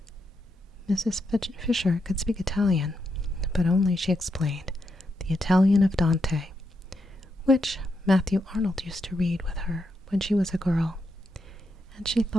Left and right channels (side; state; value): both; normal; correlation 0.82